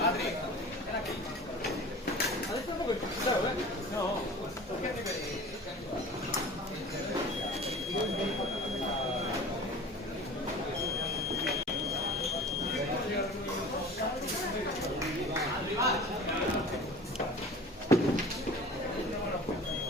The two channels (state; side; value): normal; both; correlation 0.40